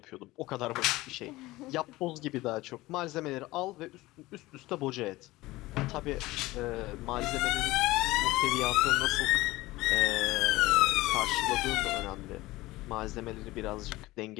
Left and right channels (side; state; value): right; quieter; 19.1 dB